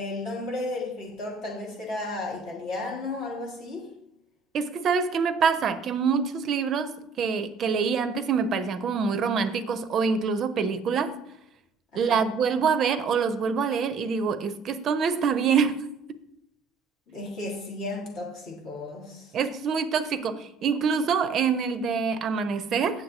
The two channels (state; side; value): quieter; left; 5.0 dB